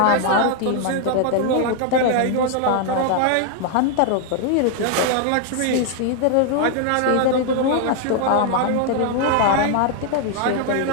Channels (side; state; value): both; different; correlation 0.00